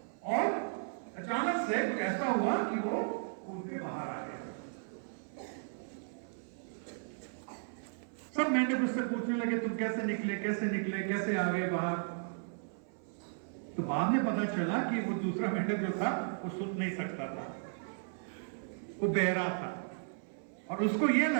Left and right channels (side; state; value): left; silent; 54 dB below the other